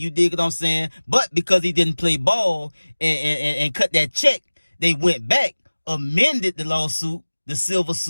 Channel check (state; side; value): inverted; both; correlation -1.00